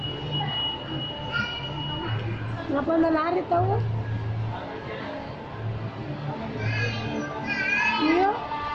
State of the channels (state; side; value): identical; both; correlation 1.00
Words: Kenapa anda lari tahu? Iya.